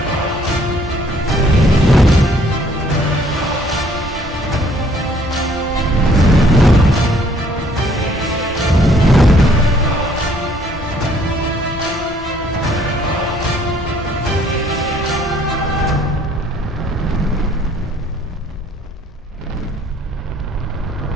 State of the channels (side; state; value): both; normal; correlation 0.61